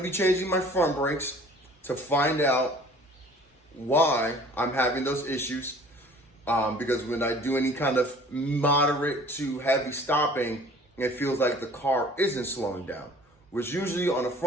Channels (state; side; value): normal; both; correlation 0.50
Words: be changing my front brakes to find out why I'm having those issues. Because when I do any kind of moderate to heavy stopping, it feels like the car isn't slowing down. Which usually on a